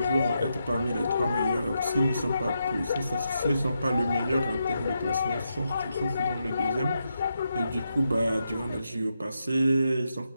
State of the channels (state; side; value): inverted; both; correlation -0.84